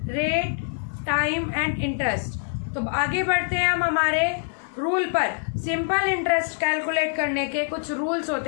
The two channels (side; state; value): right; silent; digital silence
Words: rate, time and interest. तो आगे बढ़ते हैं हम हमारे रूल पर। सिंपल इंटरेस्ट कैलकुलेट करने के कुछ रूल्स